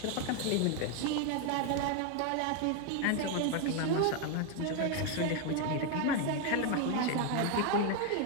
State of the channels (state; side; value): different; both; correlation 0.01